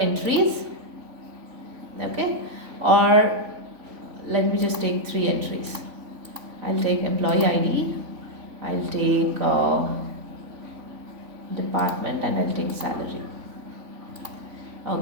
Okay. Or let me just take 3 entries. I'll take employee ID, I'll take department, and I'll take salary.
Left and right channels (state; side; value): late; left; 3.5 ms